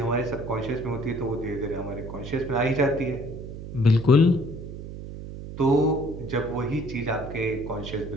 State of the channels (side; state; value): right; noise; hum, 10 dB below the sound